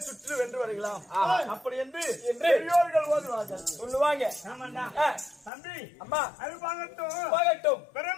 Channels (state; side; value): drops out; right; at 5.5 s